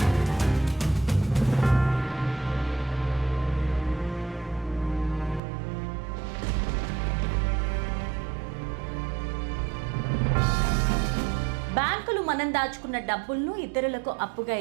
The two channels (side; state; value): left; drops out; at 5.4 s